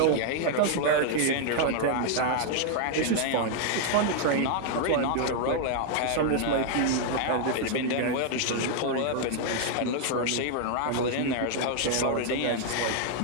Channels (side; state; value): both; different; correlation 0.00